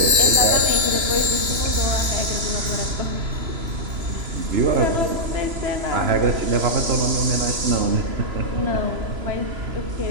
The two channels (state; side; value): late; left; 3.0 ms